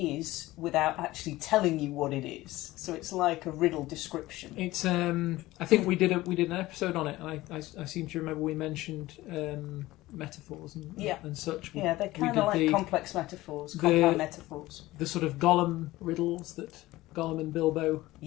without actually telling you what it is. So it's like a riddle description. It's I think we did an episode on it, and I seem to remember we mentioned metaphors and such. Yeah, they're kind of like complex metaphors, compound metaphors. The sort of Gollum riddles that Gollum and Bilbo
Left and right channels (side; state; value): right; quieter; 17.9 dB